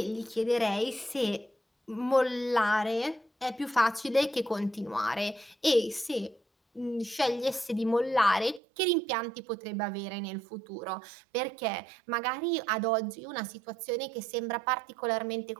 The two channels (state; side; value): drops out; left; at 8.6 s